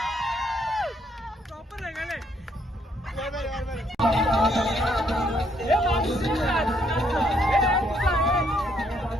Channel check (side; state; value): both; normal; correlation 0.70